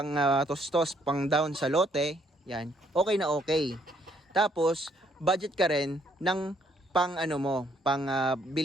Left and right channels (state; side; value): normal; both; correlation 0.68